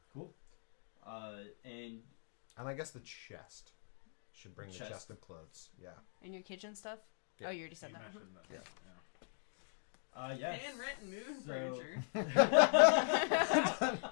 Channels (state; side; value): silent; right; digital silence